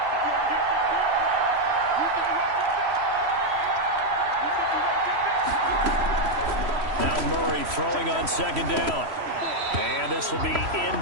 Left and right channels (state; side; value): late; left; 3.0 ms